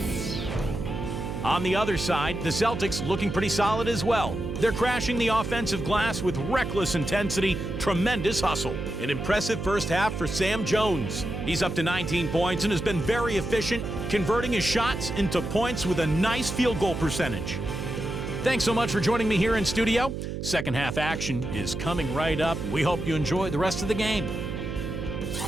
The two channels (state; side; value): noise; right; hum, 5 dB below the sound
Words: On the other side, the Celtics looking pretty solid as well. They're crashing the offensive glass with reckless intensity, tremendous hustle. An impressive first half for Sam Jones. He's up to 19 points and has been very efficient, converting his shots into points with a nice field goal percentage. Thanks so much for joining me here in studio. Second half action is coming right up. We hope you enjoy the rest of the game.